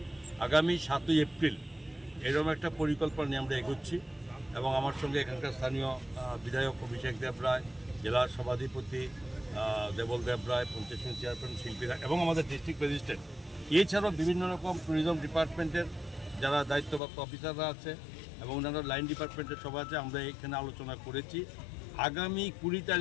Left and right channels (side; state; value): right; drops out; at 17.0 s